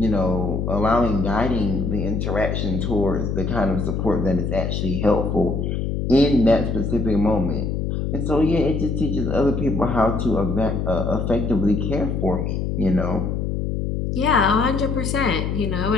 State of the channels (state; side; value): noise; left; hum, 1 dB below the sound